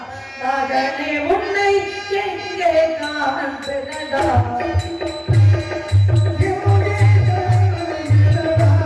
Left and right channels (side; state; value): both; identical; correlation 1.00